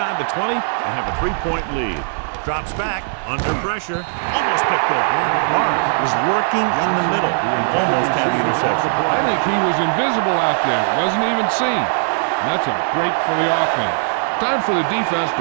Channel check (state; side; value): silent; left; digital silence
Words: the 20 and have a 3-point lead. Drops back, under pressure, almost picked off. Barnes was working in the middle and almost had the interception. I think he was invisible out there. Wasn't even seen. And that's a break for the offense. Time for the defense